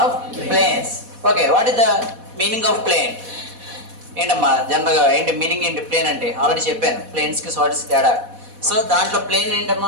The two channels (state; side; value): late; left; 4.1 ms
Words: planes. Okay, what is the meaning of plane? ఏంటమ్మా జనరల్గా ఏంటి మీనింగ్ ఏంటి ప్లేన్ అంటే? ఆల్రెడీ చెప్పాను ప్లేన్స్కి సాలిడ్స్ తేడా. సో దాంట్లో ప్లేన్